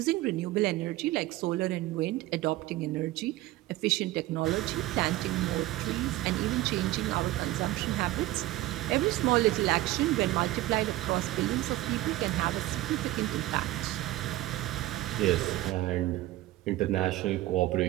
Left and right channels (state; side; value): quieter; left; 16.9 dB